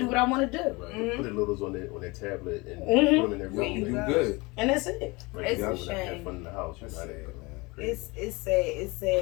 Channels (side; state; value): right; quieter; 25.1 dB